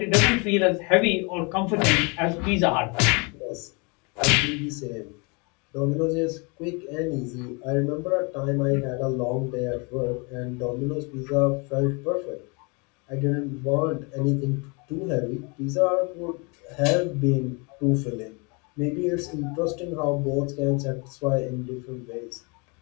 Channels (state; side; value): quieter; right; 31.2 dB